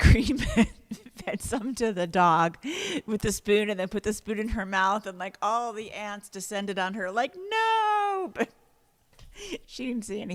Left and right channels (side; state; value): both; identical; correlation 1.00